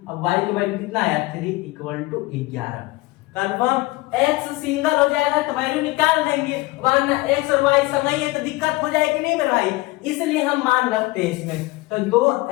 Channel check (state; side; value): quieter; right; 20.8 dB